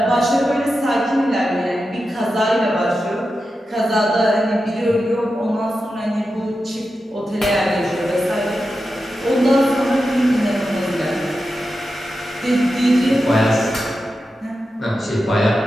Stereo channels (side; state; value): both; normal; correlation 0.90